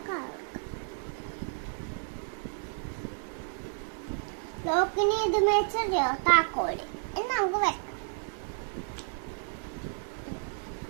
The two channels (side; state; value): left; silent; 57 dB below the other